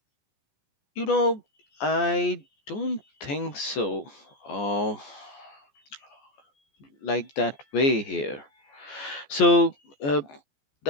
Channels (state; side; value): late; right; 14 ms